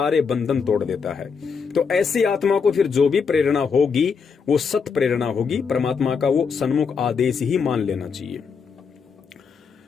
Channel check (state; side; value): quieter; right; 5.7 dB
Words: बंधन तोड़ देता है। तो ऐसी आत्मा को फिर जो भी प्रेरणा होगी वो सत प्रेरणा होगी। परमात्मा का वो सन्मुख आदेश ही मान लेना चाहिए।